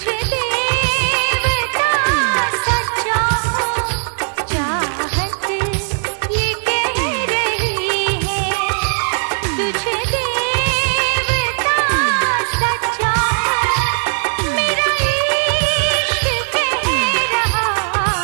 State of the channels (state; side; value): silent; left; digital silence